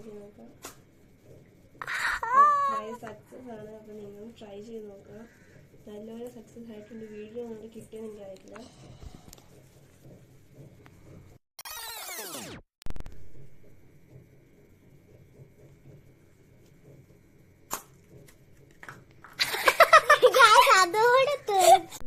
ചെയ്ത് നോക്കാം. Try success ആണ്. അപ്പൊ നിങ്ങളും ട്രൈ ചെയ്ത് നോക്കുക. നല്ലപോലെ സക്സസ് ആയിട്ടുണ്ട്. വീഡിയോ നമുക്ക് കിട്ടിയെന്ന് എനിക്കറിയില്ല.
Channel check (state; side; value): identical; both; correlation 1.00